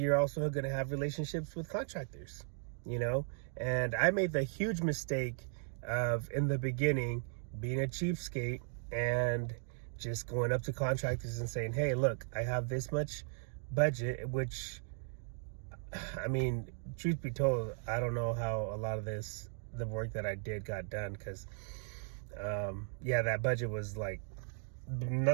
also going to have relationships with contractors, and I made the huge mistake of, in the beginning, being a cheapskate and just going up to contractors and saying, hey, look, I have this much budget, which, I mean, truth be told, I don't know how a lot of the work that I did got done, because that budget was like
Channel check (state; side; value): silent; left; 53 dB below the other